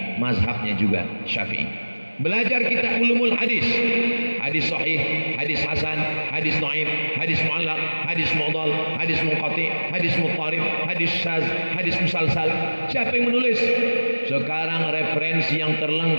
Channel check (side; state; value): both; inverted; correlation -1.00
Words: mazhabnya juga Syafi'i. Belajar kita ulumul hadis, hadis sahih, hadis hasan, hadis dhaif, hadis mu'allaq, hadis mu'dhal, hadis munqati, hadis muttarib, hadis syaz, hadis musalsal. Siapa yang menulis? Sekarang referensi yang